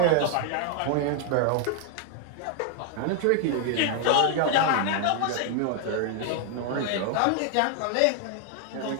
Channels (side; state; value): both; different; correlation 0.00